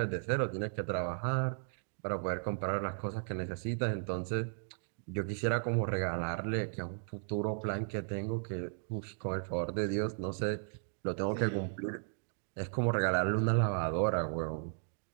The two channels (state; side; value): silent; left; digital silence